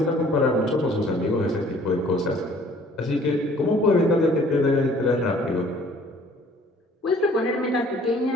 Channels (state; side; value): normal; both; correlation 0.55